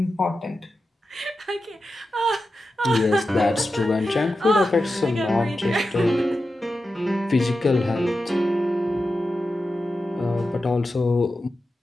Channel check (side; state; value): both; normal; correlation 0.91